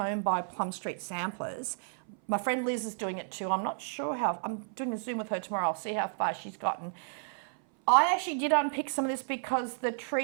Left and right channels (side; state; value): left; silent; 56 dB below the other